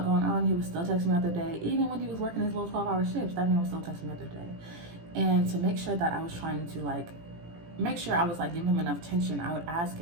going on, he would still text me throughout the day. Even when he was working his little 12-hour shifts, that man was still texting me throughout the day. And to make sure that I was trying to like make sure I was like giving him enough attention, I would ask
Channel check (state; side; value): late; left; 18 ms